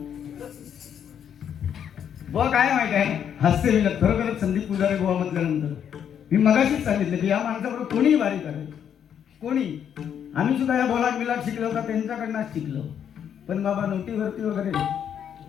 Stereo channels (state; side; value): quieter; right; 8.7 dB